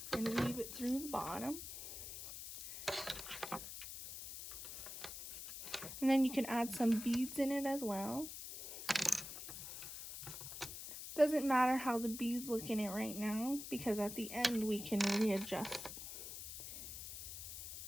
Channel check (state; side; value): noise; left; hiss, 9 dB below the sound